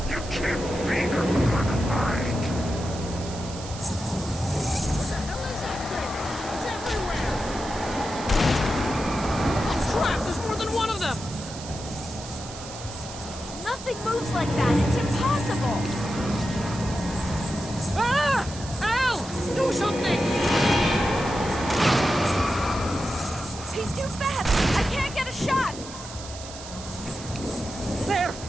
You can't be her mind. What the hell is that thing? It's everywhere! Oh crap, there's more than one of them! Nothing moves like that. It's impossible. Ah! Al! Do something! He's too fast. I can't get a shot. There!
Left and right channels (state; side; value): noise; right; hiss, 13 dB below the sound